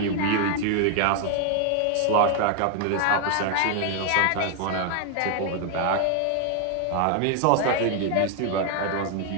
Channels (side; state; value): both; different; correlation 0.00